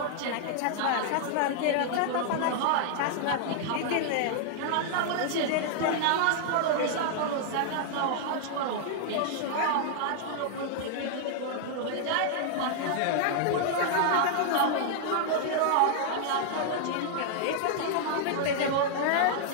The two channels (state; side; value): different; both; correlation -0.01